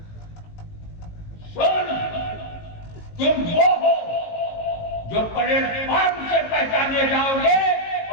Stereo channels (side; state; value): right; late; 18 ms